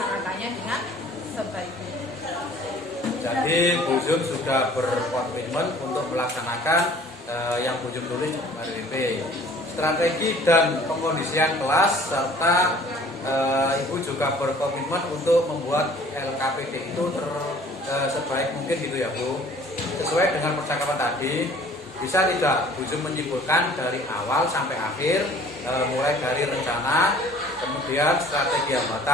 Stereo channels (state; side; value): normal; both; correlation 0.52